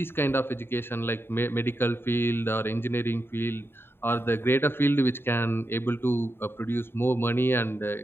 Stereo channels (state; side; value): late; right; 0.11 ms